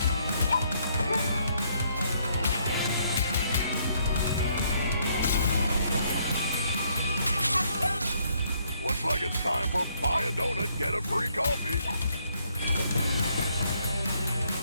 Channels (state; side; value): inverted; both; correlation -0.70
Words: Looks like it's time for buy a donut, get a free coffee.